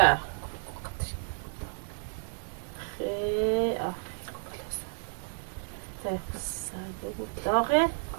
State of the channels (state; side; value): silent; left; digital silence